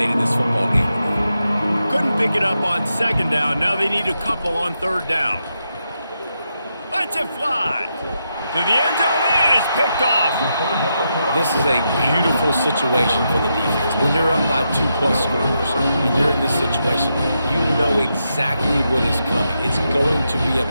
this football game. Couldn't pick it up on 2nd down. Now they need a couple on 3rd down. Lets it fly. To the end zone, and it's picked off. This is a beautiful situation for the defense. When you're up by 2+ scores and you're in this situation, you know exactly what is coming. It's going to be a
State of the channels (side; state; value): both; inverted; correlation -0.84